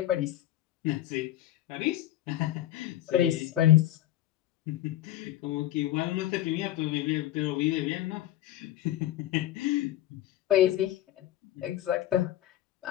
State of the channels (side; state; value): right; quieter; 13.6 dB